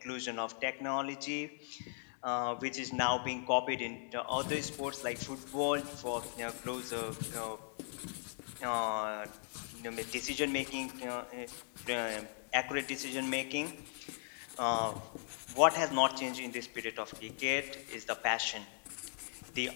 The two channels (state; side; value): silent; right; 52 dB below the other